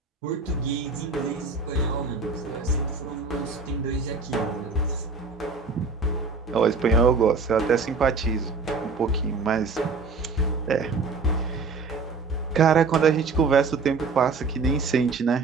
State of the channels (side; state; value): left; quieter; 4.4 dB